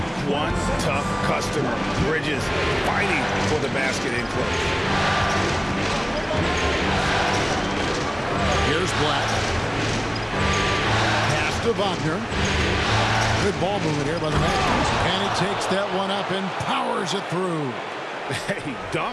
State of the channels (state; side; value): identical; both; correlation 1.00